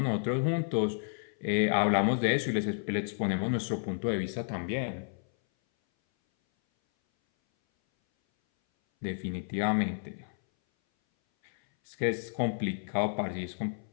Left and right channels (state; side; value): silent; right; 57 dB below the other